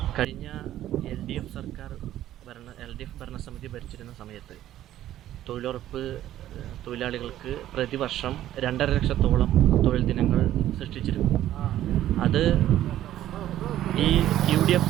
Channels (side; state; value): left; quieter; 12.8 dB